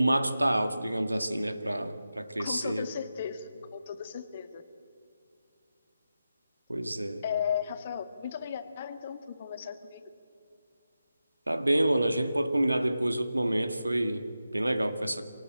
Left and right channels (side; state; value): both; inverted; correlation -0.91